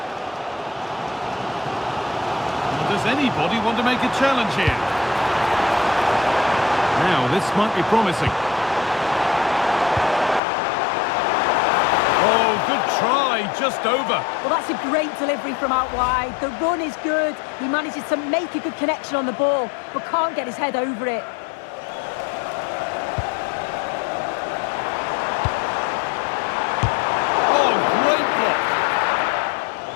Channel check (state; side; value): drops out; right; at 10.4 s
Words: Does anybody want to make a challenge here? Now, this might be promising. Oh, good try, just over. Well, that's a great delivery from out wide. The run is good. He manages to make a good connection on the ball, but can't get his head over it. Oh, great block.